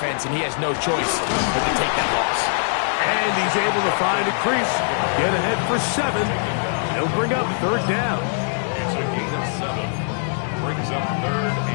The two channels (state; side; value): silent; right; digital silence